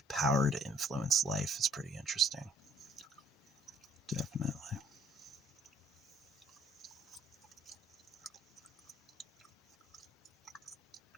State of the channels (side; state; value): both; normal; correlation 0.61